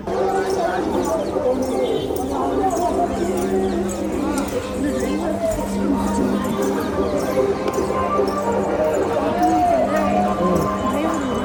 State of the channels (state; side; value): identical; both; correlation 1.00